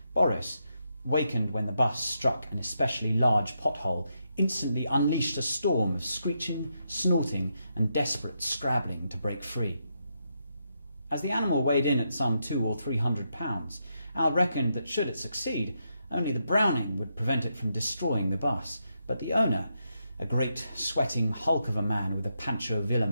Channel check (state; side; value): inverted; both; correlation -0.82